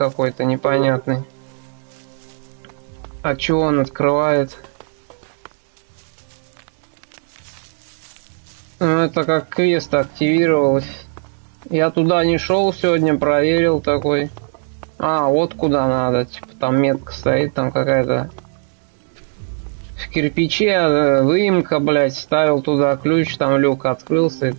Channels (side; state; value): left; silent; 60 dB below the other